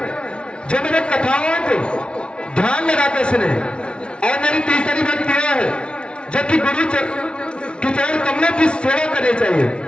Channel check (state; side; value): late; right; 0.057 ms